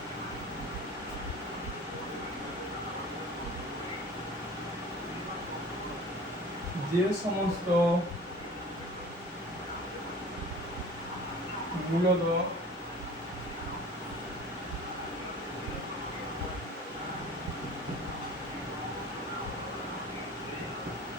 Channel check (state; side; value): normal; both; correlation 0.42